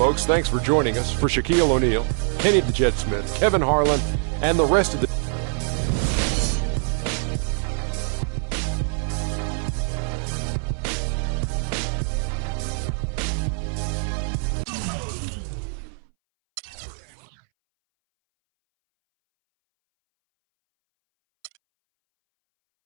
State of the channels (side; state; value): left; silent; 62 dB below the other